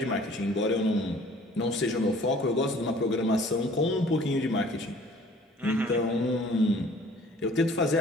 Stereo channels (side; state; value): both; normal; correlation 0.52